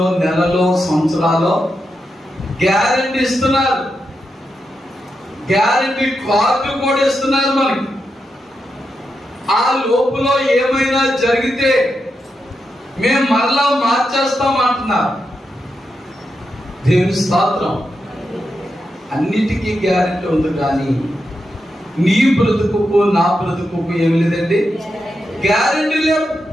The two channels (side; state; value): both; normal; correlation 0.86